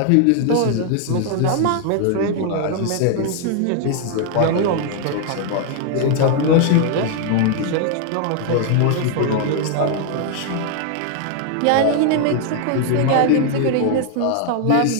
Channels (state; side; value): different; both; correlation 0.00